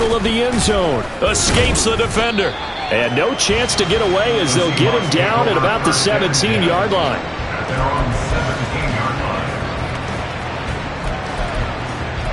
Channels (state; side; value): identical; both; correlation 1.00